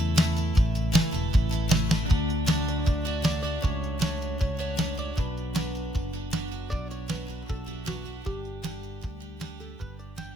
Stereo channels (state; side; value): normal; both; correlation 0.72